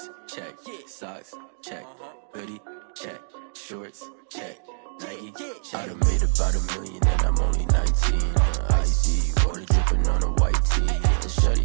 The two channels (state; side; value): silent; left; digital silence